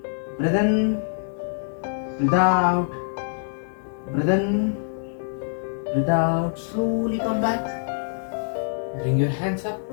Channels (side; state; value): right; silent; digital silence